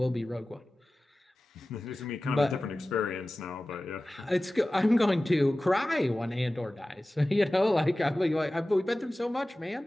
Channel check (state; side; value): normal; both; correlation 0.96